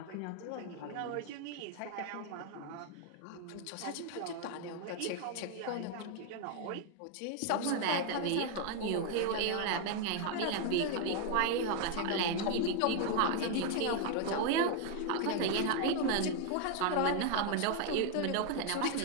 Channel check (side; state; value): both; different; correlation 0.01